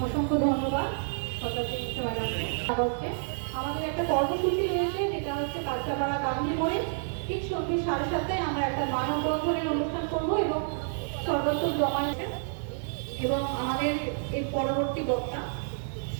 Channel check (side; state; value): left; silent; digital silence